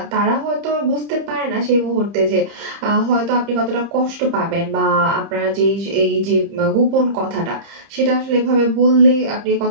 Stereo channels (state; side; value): late; left; 30 ms